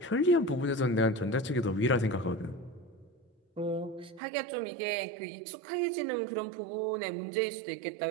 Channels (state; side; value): drops out; left; at 4.2 s